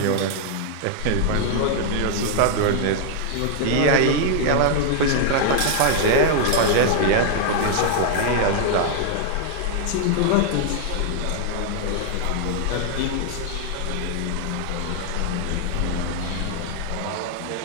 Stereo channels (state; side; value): different; both; correlation 0.00